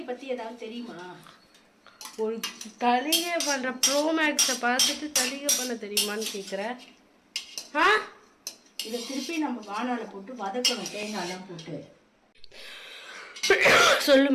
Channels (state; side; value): identical; both; correlation 1.00